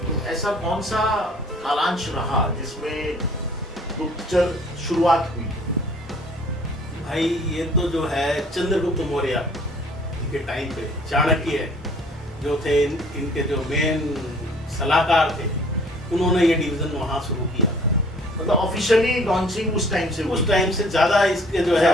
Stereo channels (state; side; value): normal; both; correlation 0.55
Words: तो ऐसा कौन सा कालांश रहा जिसमें गुप्तचर शुरुआत हुई? भाई ये तो जो है चंद्रगुप्त मौर्य के टाइम पे चाणक्य जो थे, इनके जो मेन सलाहकार थे, उन्होंने ये डिवीजन वहाँ शुरू किया था। मतलब ऑफिशियली लॉन्चिंग उस टाइम से ज्यादा इसके जो